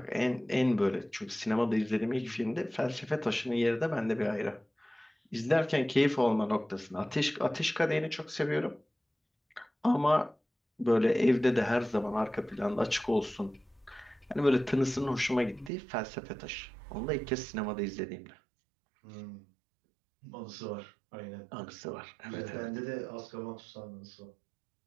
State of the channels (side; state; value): left; drops out; at 15.7 s